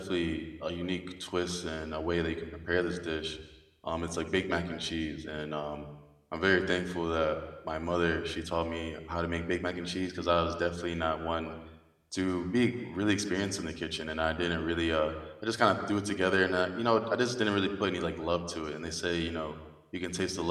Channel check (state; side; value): identical; both; correlation 1.00